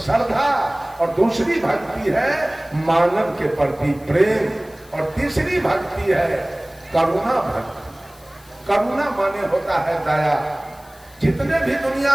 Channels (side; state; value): left; noise; hiss, 26 dB below the sound